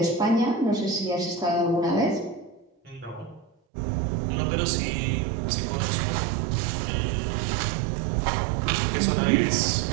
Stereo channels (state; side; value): drops out; left; at 3.5 s